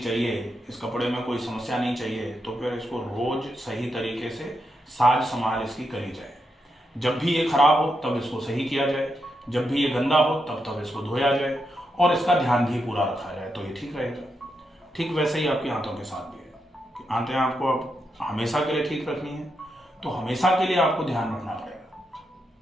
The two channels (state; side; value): normal; both; correlation 0.83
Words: इस कपड़े में कोई समस्या नहीं चाहिए, तो फिर इसको रोज सही तरीके से साज संभाल इसकी करी जाए। जब भी ये खराब हो तब इसको सही किया जाए, जब भी ये गंदा हो तब तब इसको धोया जाए और इसका ध्यान भी पूरा रखा जाए तो ये ठीक रहेगा। ठीक वैसे ही आपकी आंतों के साथ भी है कि आंतें आपको अब हमेशा के लिए ठीक रखनी है तो हमेशा के लिए आपको ध्यान रखना पड़ेगा।